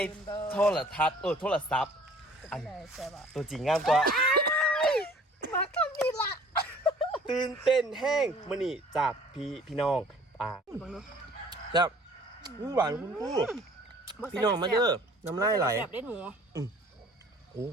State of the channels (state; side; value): normal; both; correlation 0.52